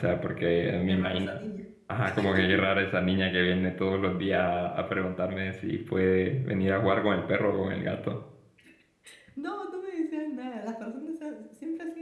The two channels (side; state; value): both; identical; correlation 1.00